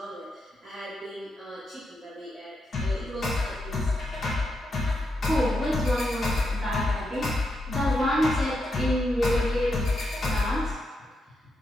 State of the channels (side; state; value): both; normal; correlation 0.83